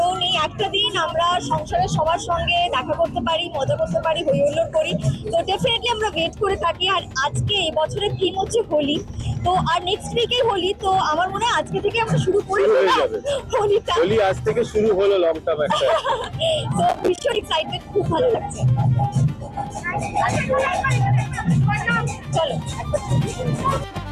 এই একটা দিন আমরা সংসারের সবার সঙ্গে দেখা করতে পারি, মজা করতে পারি, হই হুল্লোড় করি। তো ডেফিনেটলি আমরা ওয়েট করে থাকি। আর আজকে এই বছরের থিম হচ্ছে হোলি, তো আর নেক্সট উইকেই হোলি। তো আমার মনে হয় আজকে থেকে আমরা শুরু করে দিলাম হোলিটা। হোলি আজ থেকে শুরু হলো লং টার্ম একটা। তো ভীষণ এক্সাইটেড, খুব ভালো লাগছে। চলো।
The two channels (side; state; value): both; identical; correlation 1.00